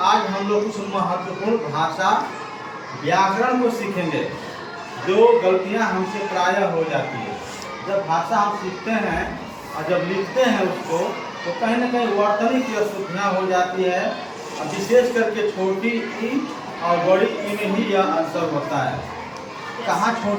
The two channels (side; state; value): both; identical; correlation 1.00